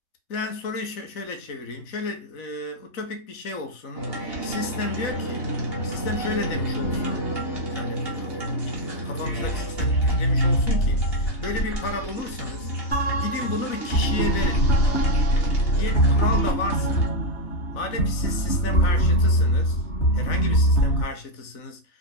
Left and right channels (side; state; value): right; late; 3.9 ms